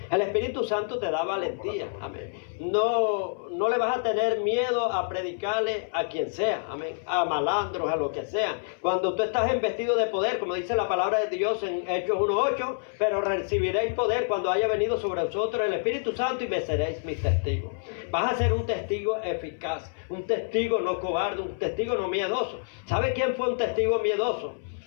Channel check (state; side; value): silent; right; 60 dB below the other